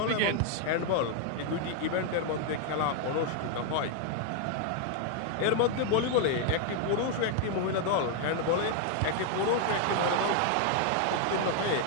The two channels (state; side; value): different; both; correlation 0.00